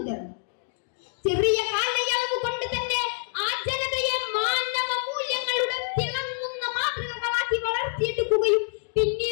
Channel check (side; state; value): right; silent; digital silence